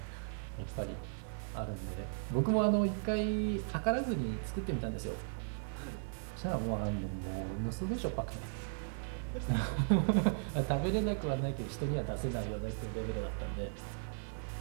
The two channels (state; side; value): silent; left; digital silence